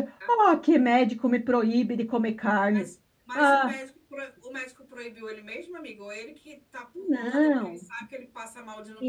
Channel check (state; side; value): identical; both; correlation 1.00